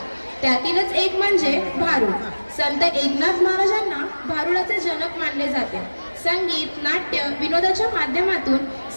त्यातीलच एक म्हणजे भारुड. संत एकनाथ महाराजांना भारुडाचे जनक मानले जाते. संगीत, नाट्य, विनोदाच्या माध्यमातून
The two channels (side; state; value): both; inverted; correlation -1.00